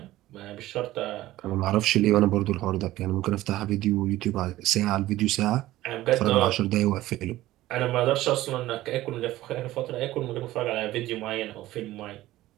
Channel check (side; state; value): left; quieter; 15.9 dB